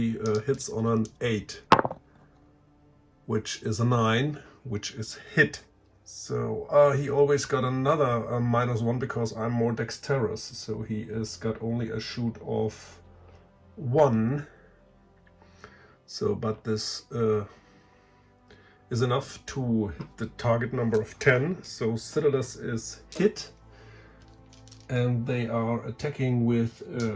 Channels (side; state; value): both; identical; correlation 1.00